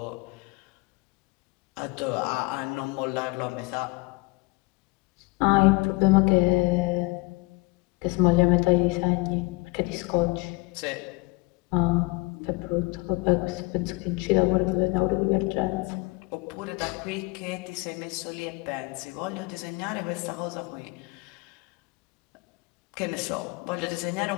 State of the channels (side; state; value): right; quieter; 25.3 dB